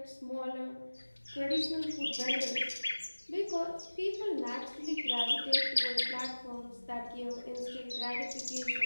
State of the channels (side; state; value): both; inverted; correlation -1.00